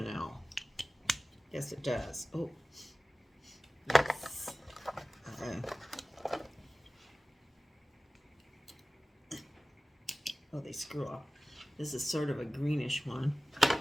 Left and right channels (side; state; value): both; normal; correlation 0.96